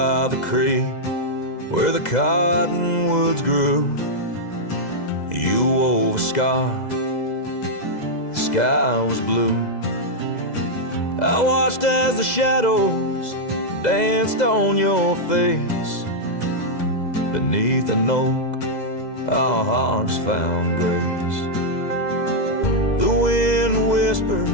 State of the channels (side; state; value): right; late; 2.0 ms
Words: by the creek where the cottonwoods grew. You wove a scarf, the sky was blue. I watched as the shadows danced on your face. Beneath an oak, our hearts found grace. The wind whispered